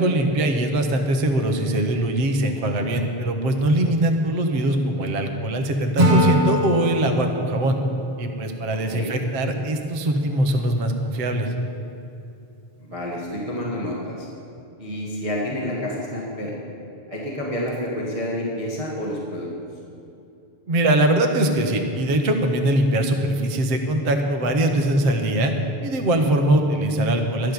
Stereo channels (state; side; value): late; left; 7.6 ms